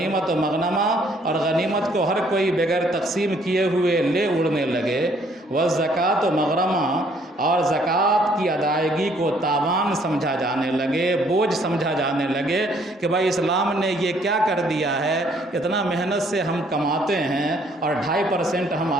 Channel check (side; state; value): both; normal; correlation 0.64